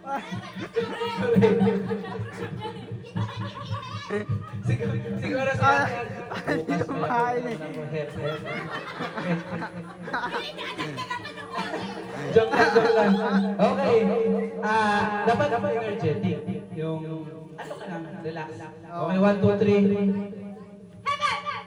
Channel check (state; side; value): identical; both; correlation 1.00